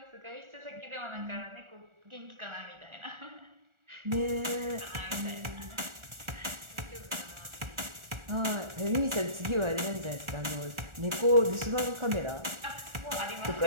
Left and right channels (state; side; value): late; left; 1.4 ms